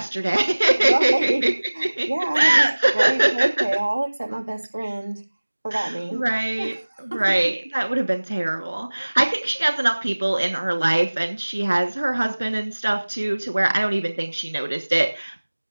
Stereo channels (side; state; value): both; inverted; correlation -1.00